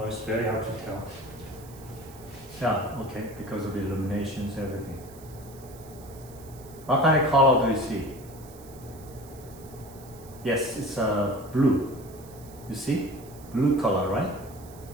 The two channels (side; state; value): right; noise; hiss, 21 dB below the sound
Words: it's very hard to tell. Yeah, okay, because of the illuminations, everything. What kind of color do you see? Yes, it's blue. You see? Blue color, right?